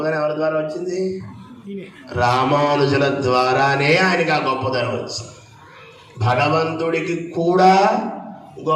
ఎవరి ద్వారా వచ్చింది? రామానుజుల ద్వారానే ఆయనకి ఆ గొప్పదనం వచ్చింది. భగవంతుడికి కూడా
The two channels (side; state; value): both; identical; correlation 1.00